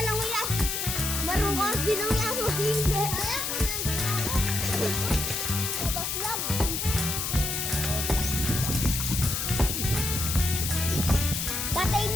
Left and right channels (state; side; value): noise; left; hiss, 1 dB below the sound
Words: lang yan. Marunong bilang yan. Hindi. Tapos lang. Patay